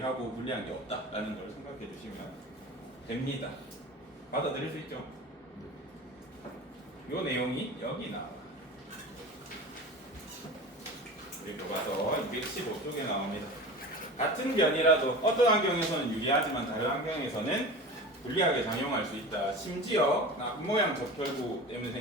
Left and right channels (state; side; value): normal; both; correlation 0.34